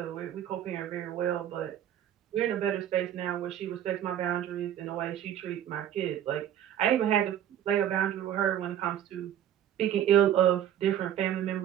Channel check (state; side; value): quieter; left; 10.7 dB